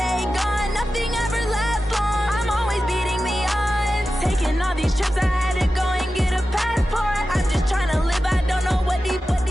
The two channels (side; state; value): both; normal; correlation 0.93